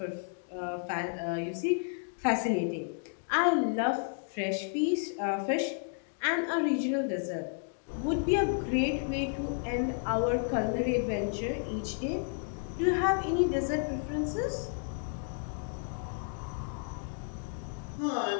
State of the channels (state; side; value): silent; right; 56 dB below the other